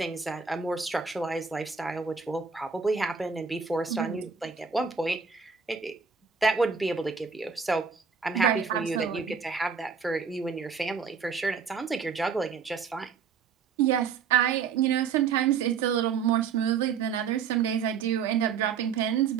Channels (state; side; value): quieter; left; 6.1 dB